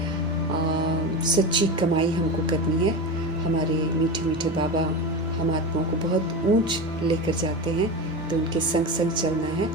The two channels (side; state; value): both; normal; correlation 0.22